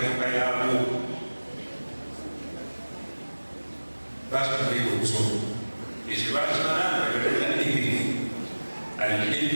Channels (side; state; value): both; inverted; correlation -1.00